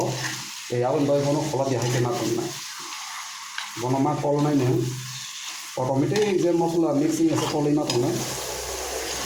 Awin doi kono kola dia hai kena kon nai. Bono ma kol nai ne. Automatic je masalah mixing ase kol ina ton nai.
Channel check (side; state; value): both; identical; correlation 1.00